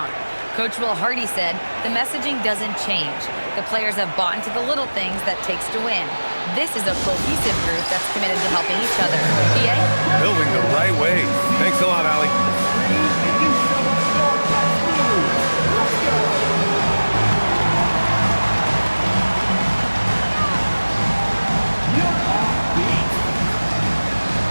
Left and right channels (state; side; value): inverted; both; correlation -1.00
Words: Coach Will Hardy said, the messaging doesn't change. The players have bought into the little things that takes to win. This is a cohesive group that's committed to helping each other. PA? Building the right way. Thanks a lot, Allie.